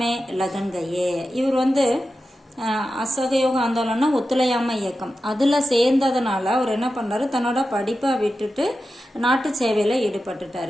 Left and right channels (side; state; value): both; normal; correlation 0.92